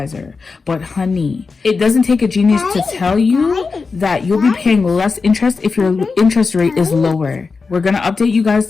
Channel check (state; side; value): quieter; right; 4.5 dB